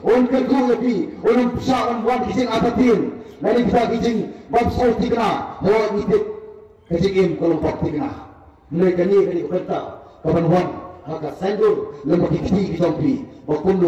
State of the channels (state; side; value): identical; both; correlation 1.00